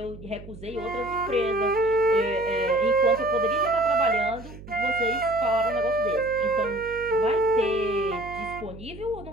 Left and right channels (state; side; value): noise; right; hum, 16 dB below the sound